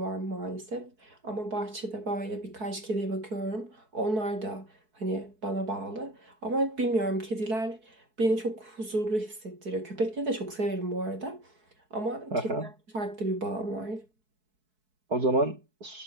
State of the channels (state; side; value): late; left; 4.6 ms